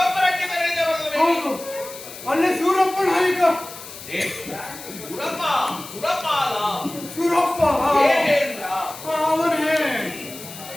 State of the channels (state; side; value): noise; left; hiss, 14 dB below the sound